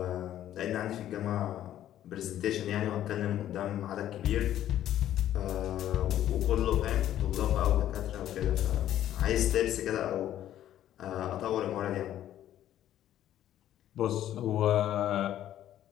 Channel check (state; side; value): quieter; right; 12.0 dB